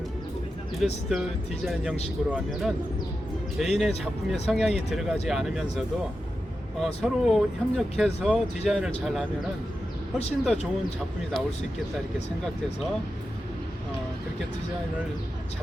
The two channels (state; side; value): normal; both; correlation 0.90